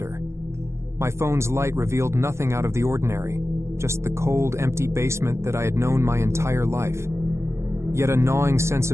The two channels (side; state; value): left; late; 0.13 ms